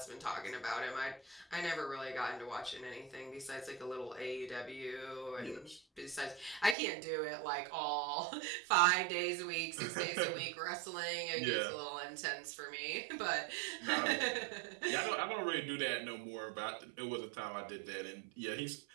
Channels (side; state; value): left; drops out; at 6.8 s